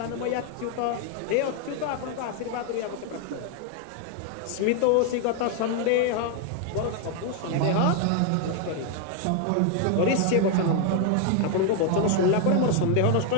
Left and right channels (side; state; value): both; different; correlation 0.00